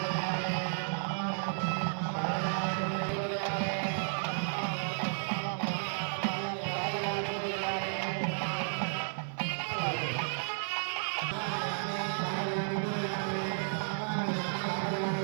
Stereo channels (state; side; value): silent; left; 56 dB below the other